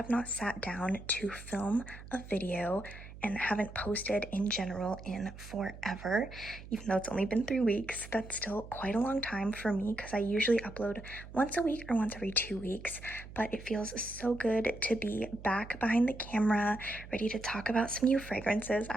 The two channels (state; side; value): noise; right; hum, 15 dB below the sound